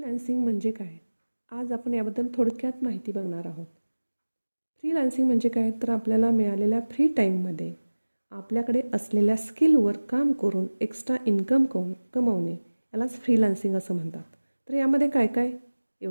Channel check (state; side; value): inverted; both; correlation -1.00